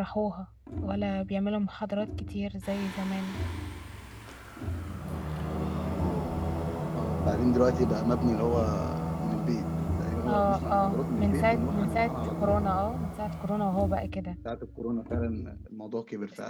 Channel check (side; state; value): both; identical; correlation 1.00